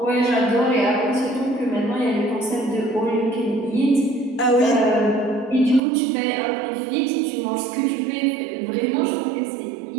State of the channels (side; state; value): left; drops out; at 5.8 s